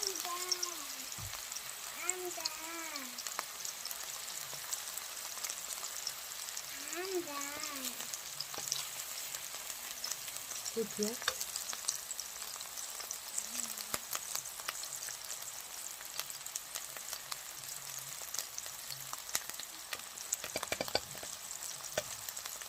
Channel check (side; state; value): both; identical; correlation 1.00